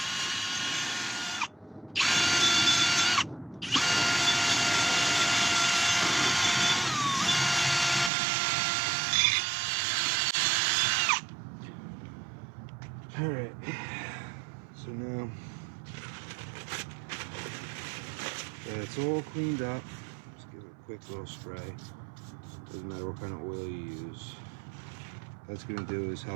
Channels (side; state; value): left; drops out; at 8.1 s